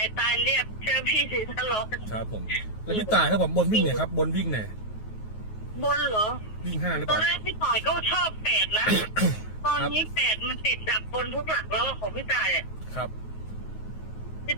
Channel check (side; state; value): right; late; 9.4 ms